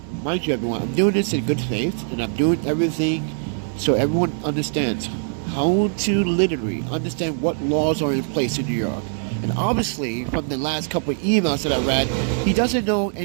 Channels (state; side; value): silent; left; digital silence